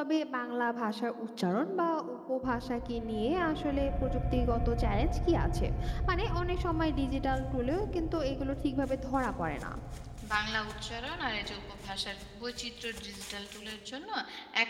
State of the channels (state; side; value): identical; both; correlation 1.00